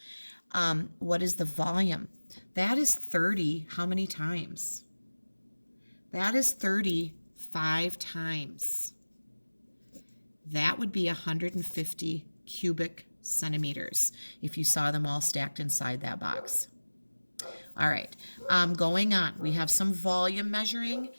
What is the volume? That is 30. How many times? That is 35 times. That would be 150 cubic centimeters if you saw them all stacked inside that box. All right, going on. We have some volume measuring.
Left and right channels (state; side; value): inverted; both; correlation -1.00